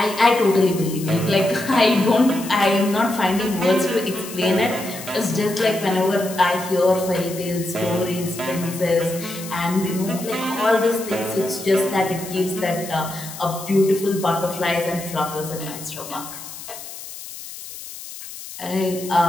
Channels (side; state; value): left; noise; hiss, 12 dB below the sound